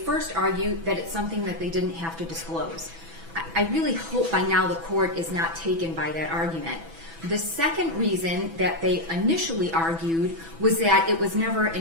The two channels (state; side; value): late; left; 6.1 ms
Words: argue that it's something that they didn't have to disclose. I really hope by now the court is not taken by that argument. The second reason that they initially argued was that it was never